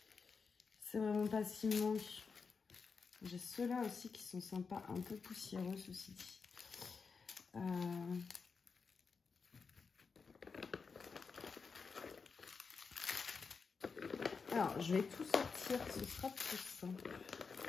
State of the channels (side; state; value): right; quieter; 5.1 dB